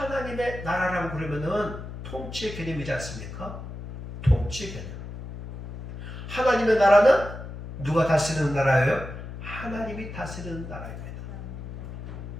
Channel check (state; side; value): noise; left; hum, 9 dB below the sound